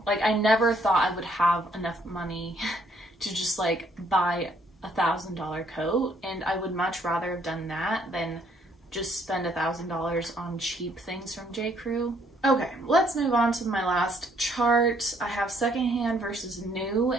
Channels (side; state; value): both; normal; correlation 0.67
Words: Like I never thought I would have enough money to just like buy a $1,000 coat, and I would much rather have done that than just spend $1,000 on cheap things from J.Crew. Okay, let's move on to my last chart. I have secondhand versus new,